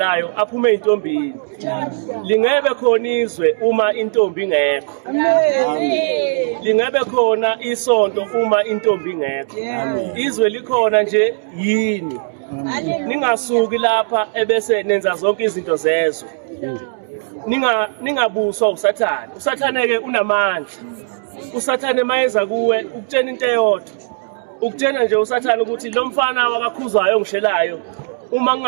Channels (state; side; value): silent; left; digital silence